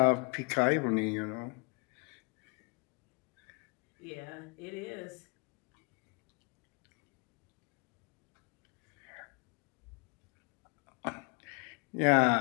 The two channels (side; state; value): right; quieter; 31.1 dB